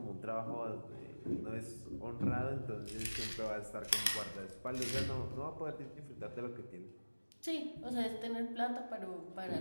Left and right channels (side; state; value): both; inverted; correlation -1.00